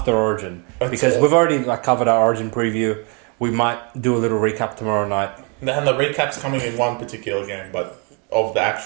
Origin? Because we've already covered our Origin preview. We might do a little recap tomorrow night. And the recap's coming in one particular game, but of the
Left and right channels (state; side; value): quieter; left; 35.1 dB